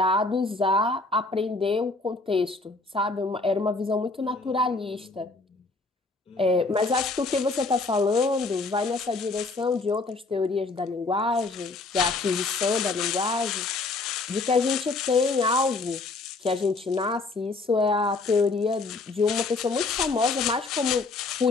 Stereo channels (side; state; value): right; quieter; 3.6 dB